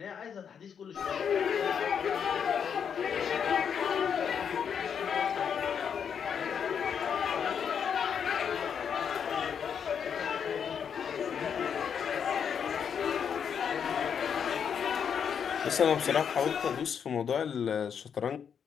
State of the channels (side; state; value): right; quieter; 7.4 dB